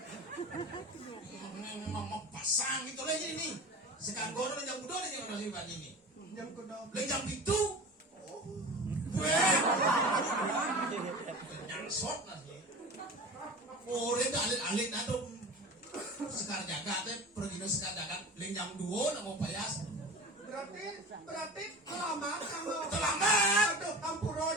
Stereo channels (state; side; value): normal; both; correlation 0.34